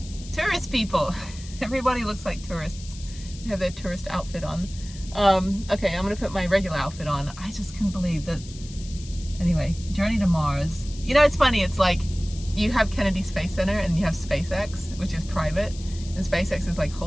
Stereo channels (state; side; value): noise; left; hiss, 17 dB below the sound